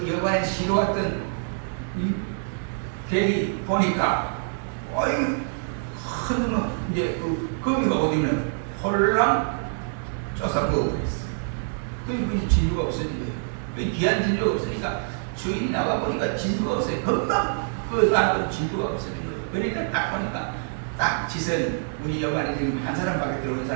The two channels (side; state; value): left; silent; 60 dB below the other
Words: 여관에 쉬러 왔던 이 대리 보니까 큰 놈은 이제 그 거미가 어디는 홀랑 쪄서 먹어버렸어. 그 진주가 없어진 거예요. 그 귀한 진주가 없으니까 주인이 나가 보니까 진주가 없어요. 금방 나도 진주가 없어진 거예요. 그러니까 딱 보니까 딱 짓은 우리 여관에 지금 한 사람밖에 들어오는